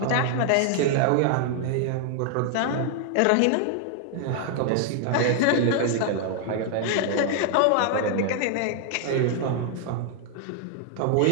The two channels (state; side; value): different; both; correlation 0.00